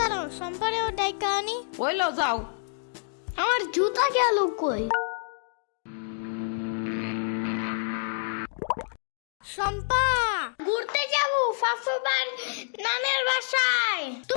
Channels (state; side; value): silent; right; digital silence